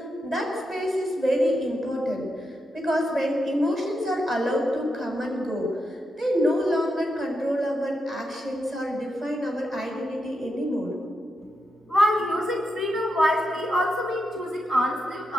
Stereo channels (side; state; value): both; normal; correlation 0.85